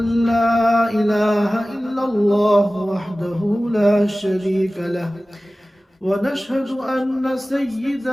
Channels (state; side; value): normal; both; correlation 0.97